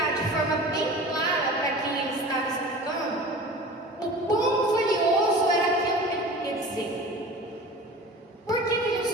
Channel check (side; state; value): both; normal; correlation 0.38